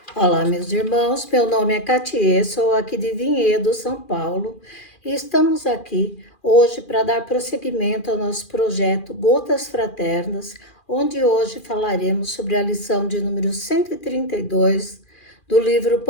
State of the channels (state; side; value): late; right; 2.4 ms